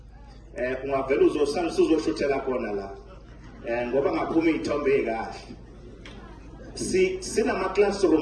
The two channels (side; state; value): both; identical; correlation 1.00